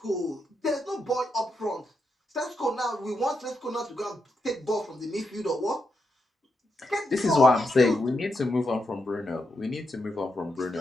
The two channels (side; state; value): both; normal; correlation 0.83